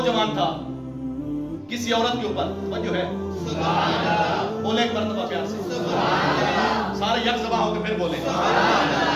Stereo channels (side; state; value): both; identical; correlation 1.00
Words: था किसी औरत के ऊपर, जो है बोले एक मर्तबा प्यार से, सारे यक सभा होकर फिर बोले।